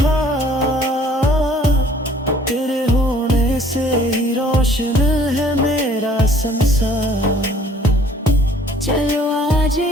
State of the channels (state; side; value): normal; both; correlation 0.56